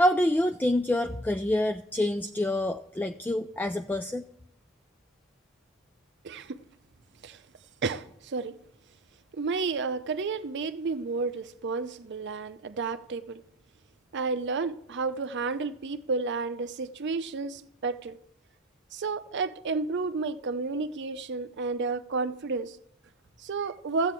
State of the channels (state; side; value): normal; both; correlation 0.35